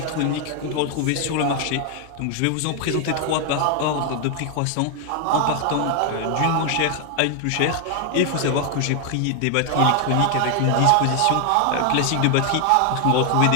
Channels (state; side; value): different; both; correlation 0.00